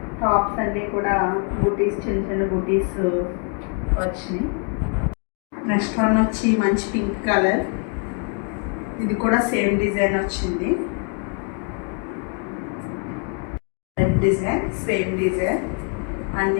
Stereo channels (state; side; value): quieter; right; 39.8 dB